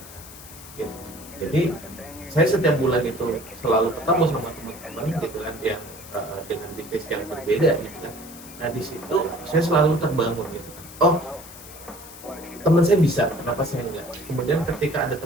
gitu. Jadi saya setiap bulan itu selalu ketemu sama teman-teman gitu kan yang dengan bisnis yang berbeda gitu kan. Nah di situ saya selalu terbangun gitu kan. Oh, teman saya bisa, kenapa saya enggak? Kemudian ketika ada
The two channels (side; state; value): left; noise; hiss, 17 dB below the sound